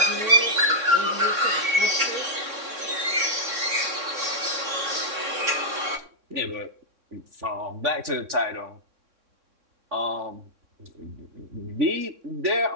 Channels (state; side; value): late; left; 3.6 ms